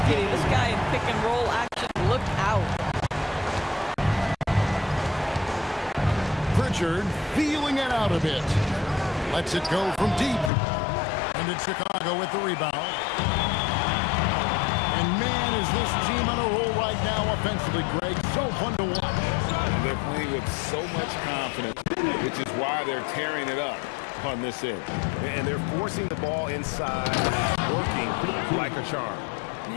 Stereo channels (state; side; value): drops out; right; at 10.5 s